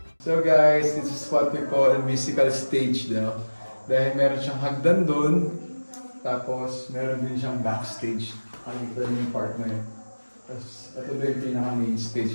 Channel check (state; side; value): inverted; both; correlation -1.00